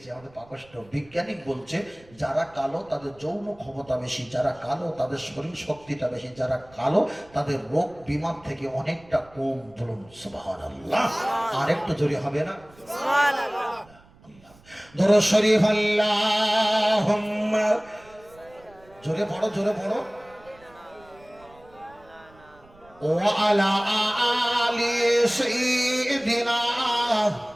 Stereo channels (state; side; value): noise; right; rumble, 27 dB below the sound